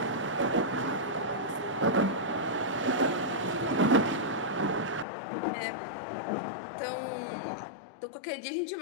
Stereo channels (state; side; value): drops out; right; at 5.1 s